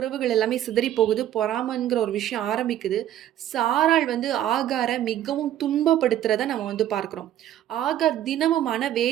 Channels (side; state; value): left; quieter; 11.9 dB